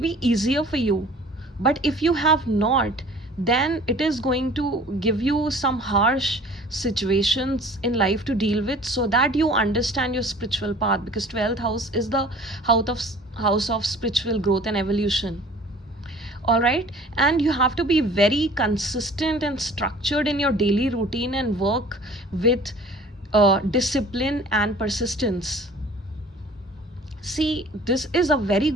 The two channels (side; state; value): both; normal; correlation 0.47